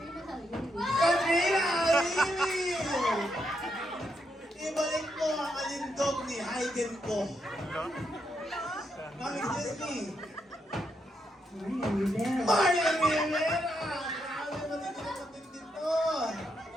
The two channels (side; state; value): both; normal; correlation 0.81